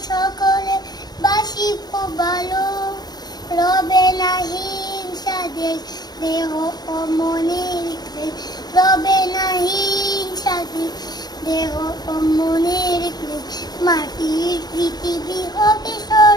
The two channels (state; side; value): late; right; 0.19 ms